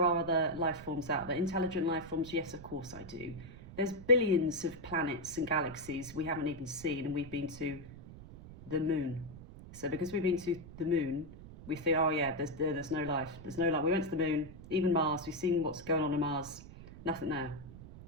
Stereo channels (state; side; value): noise; right; rumble, 15 dB below the sound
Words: are other life forms out there. Intelligent life forms, yes, of course I do. There's billions of planets and galaxies we haven't even seen, and we've been to the moon. So because we've been to the moon, we think, oh yeah, there's no life. There's no life. We went to the moon, even Mars. We've seen what's going on Mars. Nothing there.